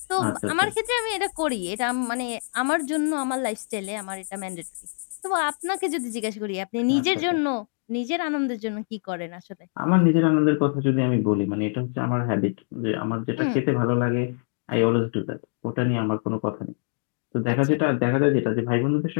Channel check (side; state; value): right; silent; 62 dB below the other